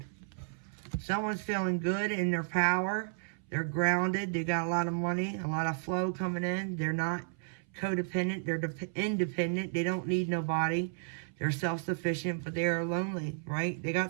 Someone's feeling good in their power. They're grounded. They got a lot of money, a lot of flow coming in. They're not codependent. They're independent. They don't need nobody. They're self-sufficient, but they are lonely, right? They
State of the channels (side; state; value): left; silent; 56 dB below the other